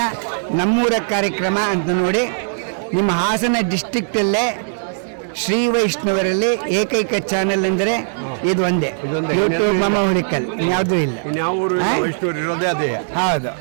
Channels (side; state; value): left; silent; digital silence